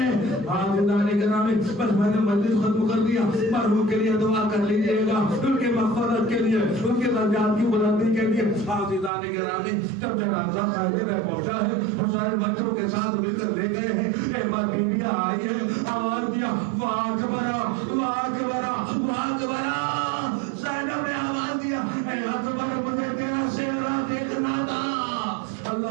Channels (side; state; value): left; drops out; at 9.1 s